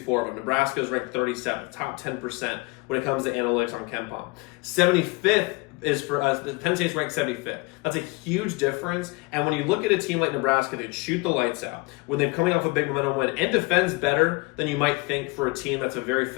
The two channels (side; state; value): right; quieter; 26.1 dB